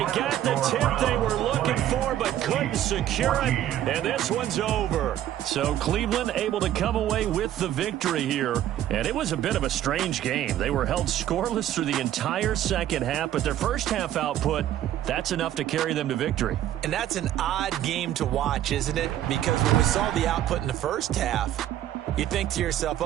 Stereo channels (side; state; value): left; quieter; 12.1 dB